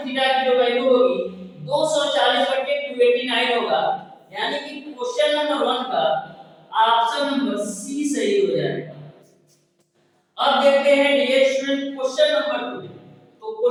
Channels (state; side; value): identical; both; correlation 1.00